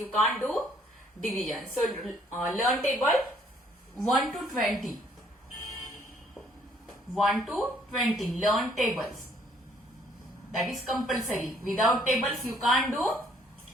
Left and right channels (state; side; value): normal; both; correlation 0.63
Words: can't do division. So learn table 1 to 20. 1 to 20, learn tables. That is compulsory. Without tables you can't do